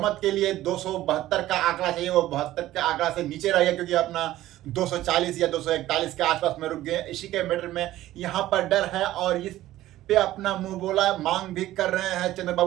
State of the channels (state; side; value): quieter; left; 14.9 dB